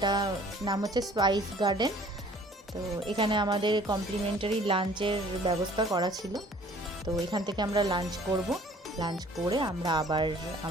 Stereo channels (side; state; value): both; normal; correlation 0.53